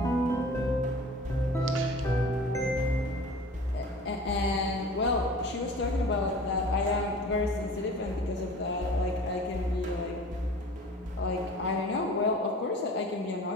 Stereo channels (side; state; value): both; normal; correlation 0.42